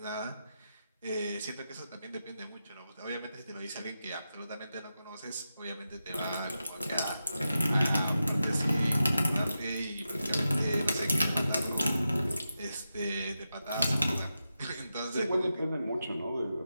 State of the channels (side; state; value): both; inverted; correlation -0.90